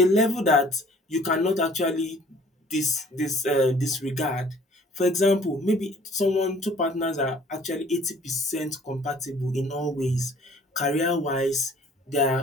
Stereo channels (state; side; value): normal; both; correlation 0.54